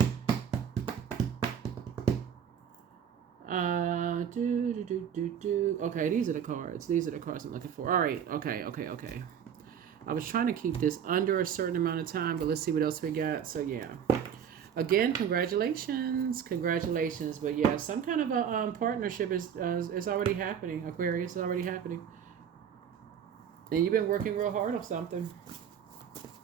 Okay, these are the cards. These are the cards I'm looking for. All right. Okay. I was trying to keep this under a certain amount of time, but let's see what else we got. So yeah. Again, congratulations, congratulations. But yeah, some kind of a partnership is already happening. Aquarius is already happening, and you've been working real hard on something.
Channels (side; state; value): left; quieter; 8.3 dB